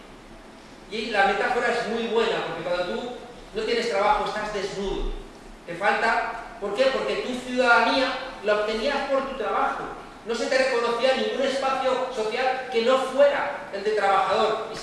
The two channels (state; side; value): identical; both; correlation 1.00